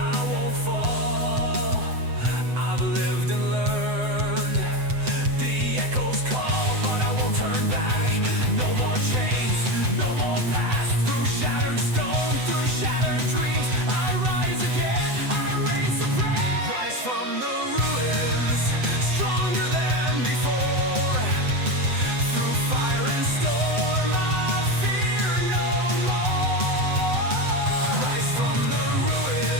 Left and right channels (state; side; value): late; left; 7.9 ms